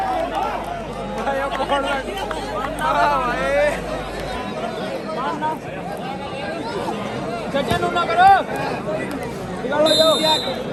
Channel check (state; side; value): identical; both; correlation 1.00